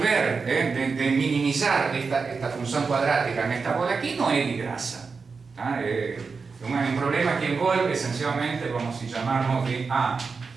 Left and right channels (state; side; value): quieter; left; 4.9 dB